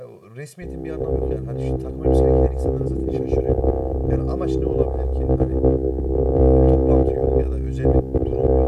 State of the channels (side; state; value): both; identical; correlation 1.00